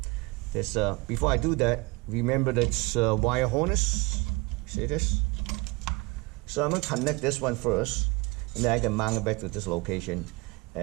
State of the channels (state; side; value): quieter; left; 25.3 dB